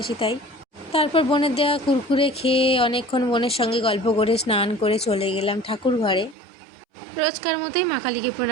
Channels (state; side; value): drops out; left; at 6.4 s